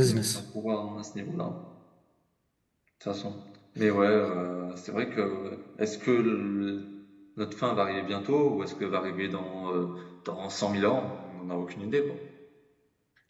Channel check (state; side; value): identical; both; correlation 1.00